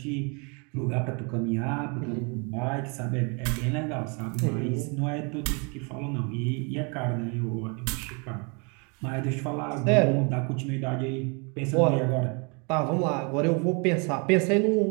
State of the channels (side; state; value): left; quieter; 33.8 dB